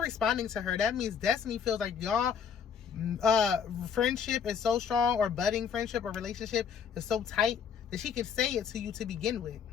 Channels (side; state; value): right; quieter; 7.1 dB